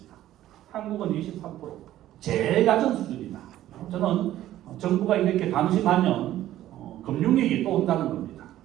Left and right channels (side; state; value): left; quieter; 13.5 dB